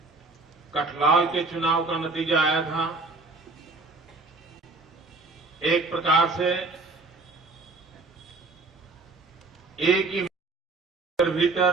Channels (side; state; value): left; quieter; 3.6 dB